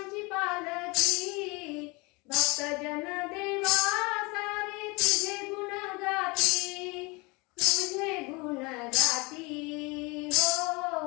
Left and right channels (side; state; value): right; quieter; 26.6 dB